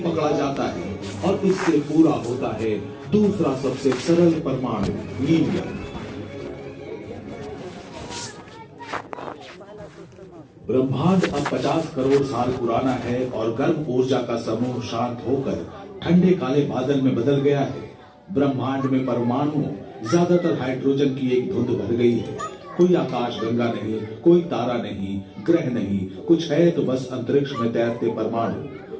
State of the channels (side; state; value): both; identical; correlation 1.00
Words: जाता है और इससे पूरा होता है दूसरा सबसे सरल परमाणु, हीलियम। ब्रह्मांड अब 50 करोड़ साल पुराना है और गर्म ऊर्जा का समूह शांत होकर ठंडे काले बादल में बदल गया है। ब्रह्मांड में परमाणु ज्यादातर हाइड्रोजन की एक धुंध भर गई है। कोई आकाश गंगा नहीं, कोई तारा नहीं, ग्रह नहीं, कुछ है तो बस अंतरिक्ष में तैरते